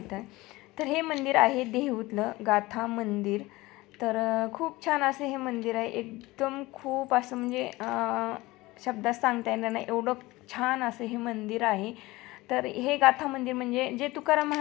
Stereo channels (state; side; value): quieter; right; 20.2 dB